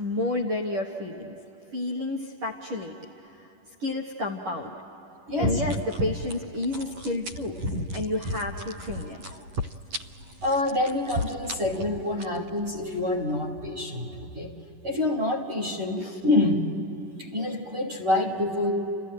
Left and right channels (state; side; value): late; left; 11 ms